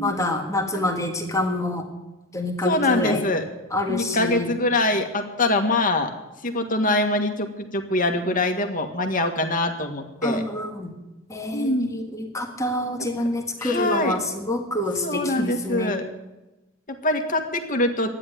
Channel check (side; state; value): both; normal; correlation 0.15